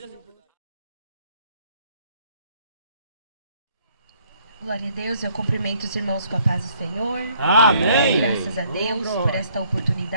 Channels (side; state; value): both; inverted; correlation -0.64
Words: Glória a Deus, eu cumprimento os irmãos com a paz do Senhor. Amém. Graças a Deus por esta